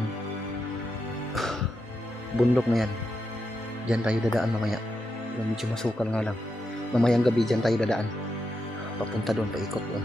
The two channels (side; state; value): both; normal; correlation 0.85